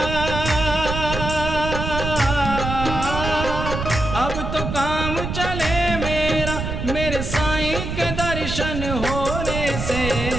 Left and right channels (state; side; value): noise; right; rumble, 4 dB below the sound